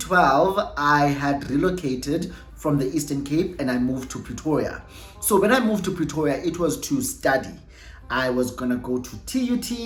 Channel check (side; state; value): both; identical; correlation 1.00